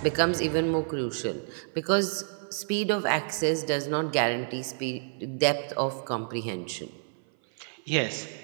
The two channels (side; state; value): left; silent; 56 dB below the other